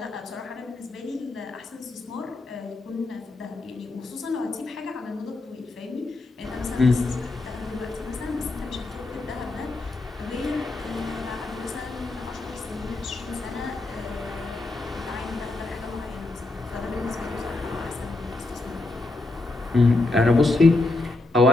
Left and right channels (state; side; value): quieter; right; 3.0 dB